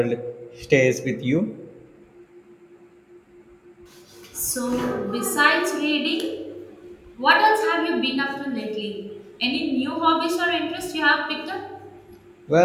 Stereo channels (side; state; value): both; identical; correlation 1.00